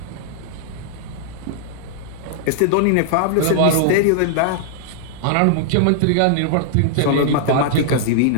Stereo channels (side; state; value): both; different; correlation -0.01